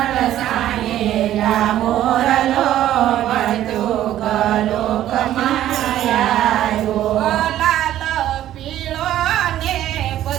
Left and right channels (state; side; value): quieter; left; 12.6 dB